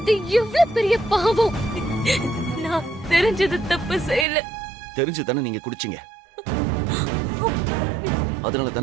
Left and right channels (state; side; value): drops out; left; at 4.2 s